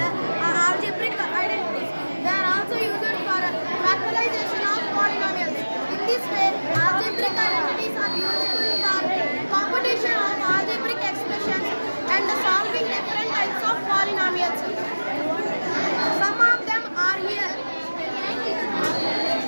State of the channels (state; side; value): inverted; both; correlation -1.00